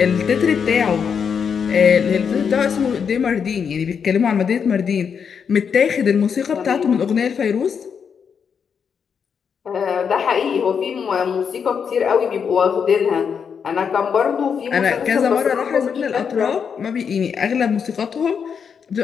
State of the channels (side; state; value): right; quieter; 6.7 dB